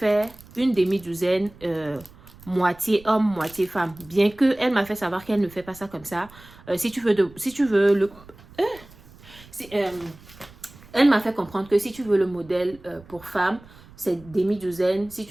une demi-douzaine, moitié homme, moitié femme. Bien que elle m'a fait savoir qu'elle ne fait pas ça comme ça. Elle m'a fait comprendre que si tu veux le modèle pour femme, c'est demi-douzaine. Si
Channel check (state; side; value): noise; right; rumble, 22 dB below the sound